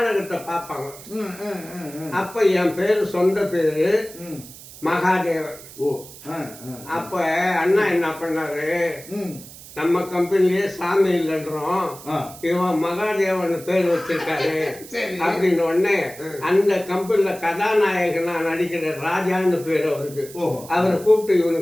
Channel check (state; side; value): noise; right; hiss, 17 dB below the sound